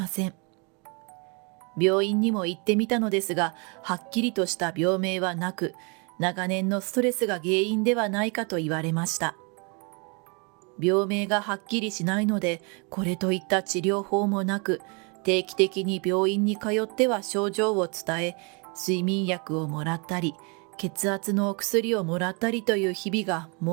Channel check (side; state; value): left; quieter; 32.9 dB